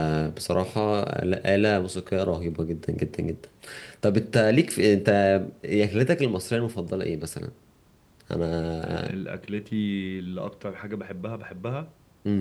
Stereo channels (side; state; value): both; identical; correlation 1.00